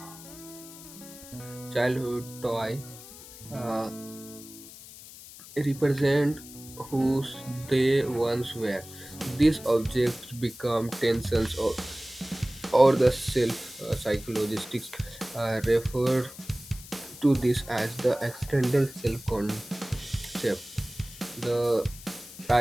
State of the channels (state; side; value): noise; left; hiss, 16 dB below the sound